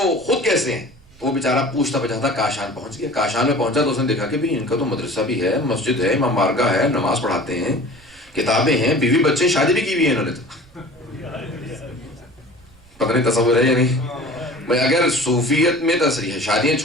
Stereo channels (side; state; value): right; noise; rumble, 27 dB below the sound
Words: خود کیسے ہیں۔ تو وہ بیچارہ پوچھتا پچھاتا کاشان پہنچ گیا۔ کاشان میں پہنچا تو اس نے دیکھا کہ ان کا تو مدرسہ بھی ہے، مسجد ہے، امام بارگاہ ہے، نماز پڑھاتے ہیں، کتابیں ہیں، بیوی بچے، شادی بھی کی ہوئی ہے انہوں نے، تو پتہ نہیں تصور ہے یا نہیں؟ اگر صوفیت میں تصریح ہے شادیاں